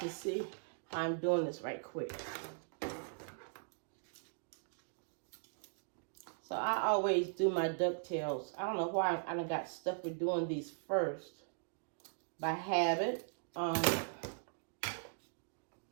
see how I'm doing this right quick. So I always do my ducktails. I don't know why I got stuck with doing these first by habit.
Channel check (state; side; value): silent; left; digital silence